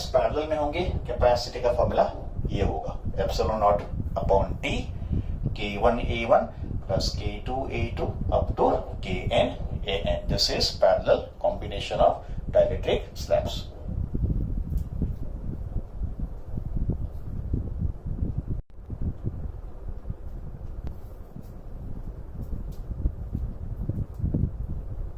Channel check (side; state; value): both; identical; correlation 1.00